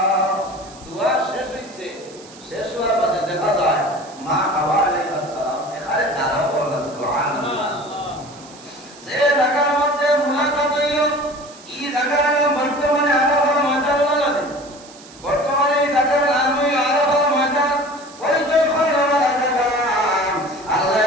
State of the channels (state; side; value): noise; right; hiss, 21 dB below the sound